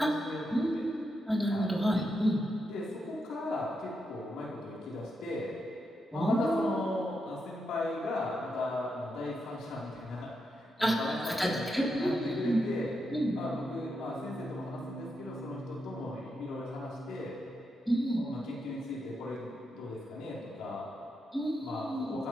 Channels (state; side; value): normal; both; correlation 0.84